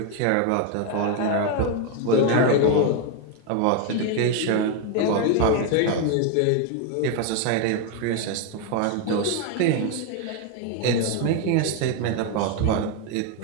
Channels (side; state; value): both; different; correlation 0.01